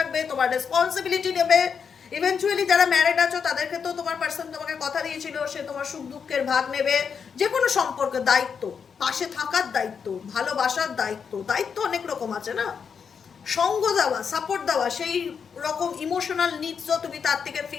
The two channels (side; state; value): right; quieter; 6.5 dB